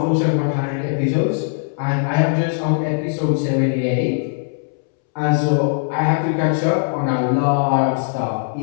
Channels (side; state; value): right; silent; 66 dB below the other